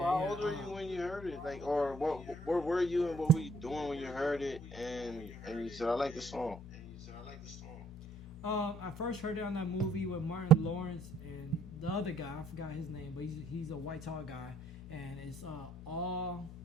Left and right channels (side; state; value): both; normal; correlation 0.64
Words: how old were you when you heard it? Like, or where were you and what were you doing when you heard it? And you said, I like the song. I first heard it on that movie with Martin Lawrence and the other guy. I forgot his name, but he's a white tall guy, and it's all